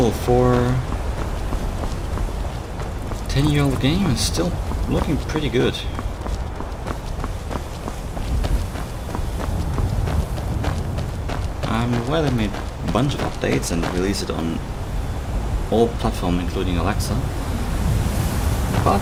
for 10-year-old game, it's still looking pretty good. I'm aware they made a bunch of updates and released it on all platforms, including Alexa.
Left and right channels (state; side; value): identical; both; correlation 1.00